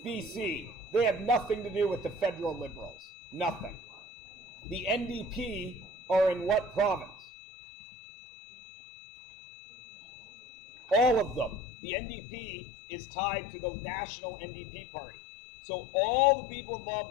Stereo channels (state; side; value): drops out; right; at 11.6 s